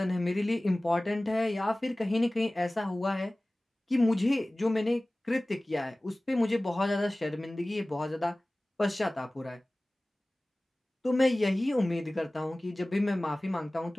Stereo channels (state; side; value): normal; both; correlation 0.98